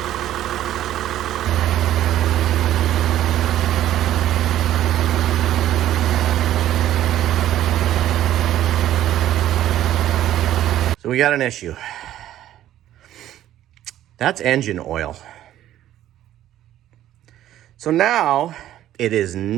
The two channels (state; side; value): quieter; left; 12.6 dB